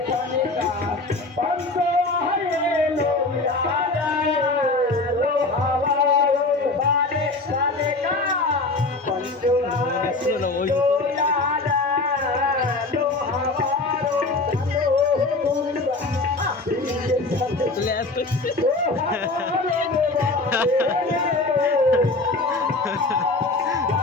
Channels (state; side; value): quieter; right; 3.3 dB